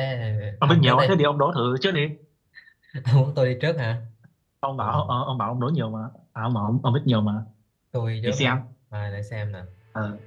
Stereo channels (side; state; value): both; identical; correlation 1.00